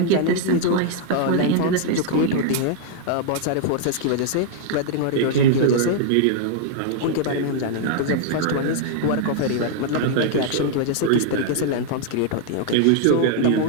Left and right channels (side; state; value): both; different; correlation -0.01